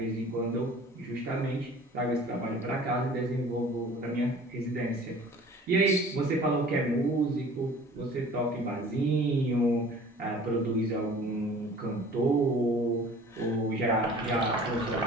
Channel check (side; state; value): both; normal; correlation 0.47